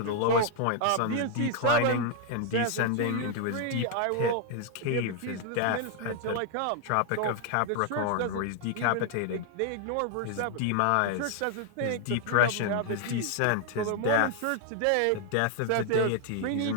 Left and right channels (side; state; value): both; different; correlation 0.00